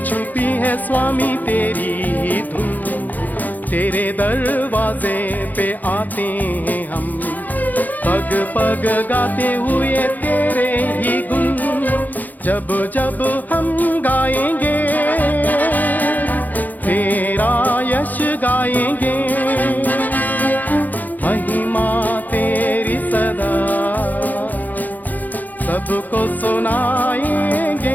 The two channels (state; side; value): late; right; 0.083 ms